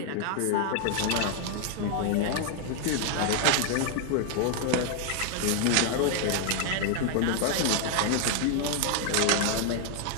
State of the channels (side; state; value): both; different; correlation 0.00